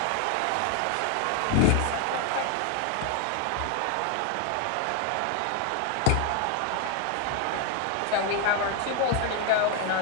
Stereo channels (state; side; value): different; both; correlation 0.01